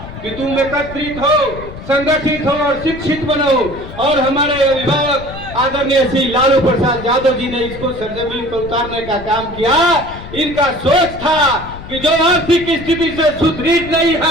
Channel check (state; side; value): noise; left; rumble, 13 dB below the sound